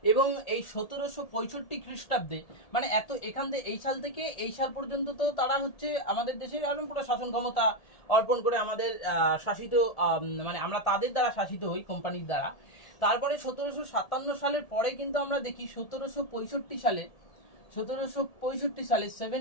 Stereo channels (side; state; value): right; late; 1.7 ms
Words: এবং এই 1765 খ্রিস্টাব্দে মানে এখান থেকে এই সাল থেকে এই সাল পর্যন্ত তো তারা হচ্ছে আমাদের দেশের একদম পুরো শাসন ক্ষমতা অর্পণ করে আমাদের শাসিত, মানে আমরা তাদের দ্বারা শাসিত হই, কোম্পানির দ্বারা। তারপরে 1757 সালের পরে কিন্তু আমরা দেখি 1765 সালে